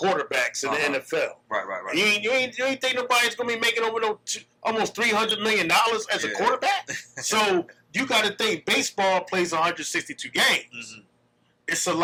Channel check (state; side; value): identical; both; correlation 1.00